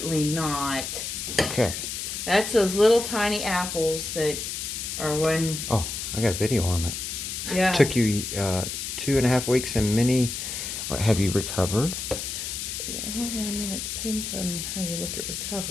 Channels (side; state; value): left; noise; hiss, 5 dB below the sound